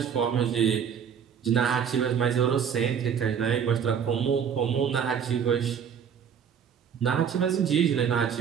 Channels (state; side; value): quieter; left; 7.7 dB